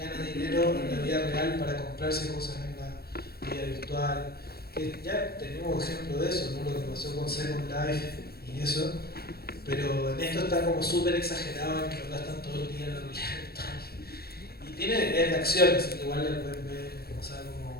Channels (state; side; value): late; right; 0.45 ms